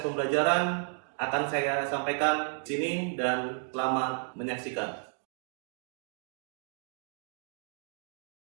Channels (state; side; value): silent; left; 56 dB below the other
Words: pembelajaran akan saya sampaikan di sini dan selamat menyaksikan.